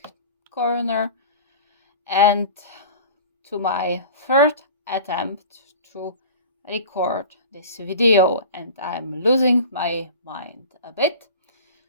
Corner and to my third attempt to record this video, and I'm losing my mind a bit,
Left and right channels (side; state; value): both; inverted; correlation -0.38